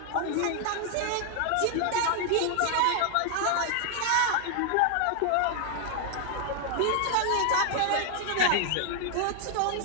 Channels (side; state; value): both; different; correlation 0.00